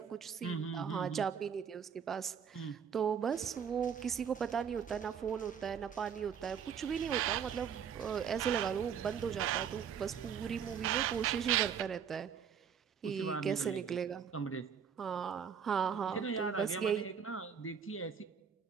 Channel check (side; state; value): left; quieter; 7.4 dB